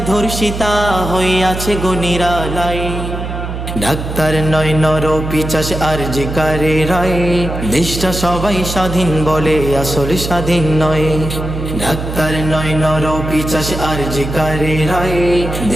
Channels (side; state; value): right; noise; hum, 6 dB below the sound